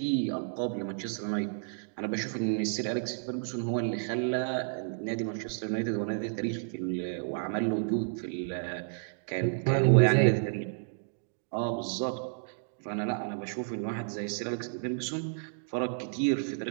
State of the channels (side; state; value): left; silent; digital silence